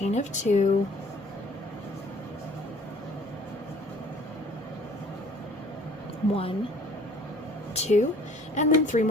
of 2, one, 2, and then 3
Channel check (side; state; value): both; normal; correlation 0.53